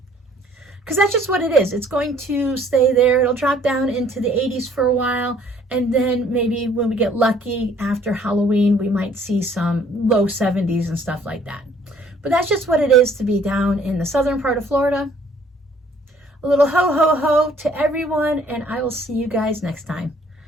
Because that's just what it is. It's going to stay there. It'll drop down into the 80s for a while. And then maybe when we get lucky after Halloween, we might see some low 70s and stuff like that. But that's just what it is to be down in the southern part of Florida. A little ho, ho, ho to everyone, and I will see you guys next time.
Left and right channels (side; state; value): both; normal; correlation 0.59